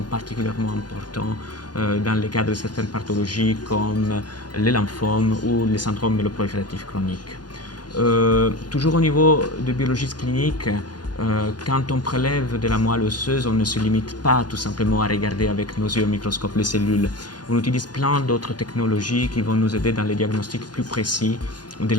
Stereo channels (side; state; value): right; late; 0.70 ms